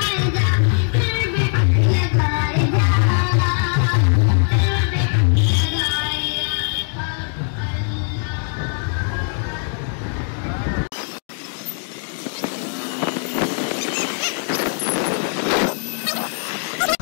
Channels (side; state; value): right; silent; 57 dB below the other